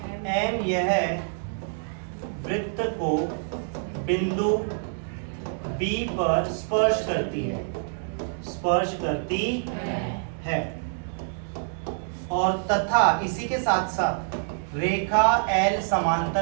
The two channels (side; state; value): left; silent; digital silence